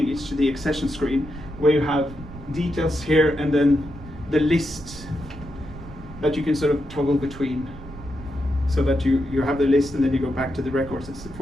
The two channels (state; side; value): noise; right; rumble, 15 dB below the sound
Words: It's the accession screen, where you have details here and then the list that you can sort of toggle between, so that you have the list and then you go back to the records and